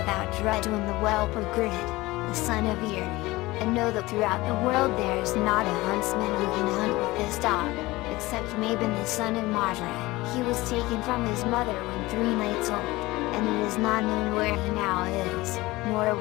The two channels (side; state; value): right; quieter; 20.0 dB